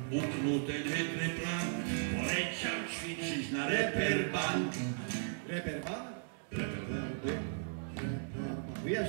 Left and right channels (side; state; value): left; silent; digital silence